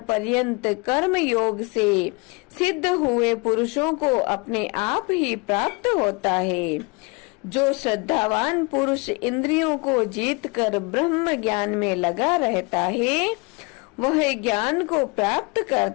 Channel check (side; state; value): right; quieter; 28.7 dB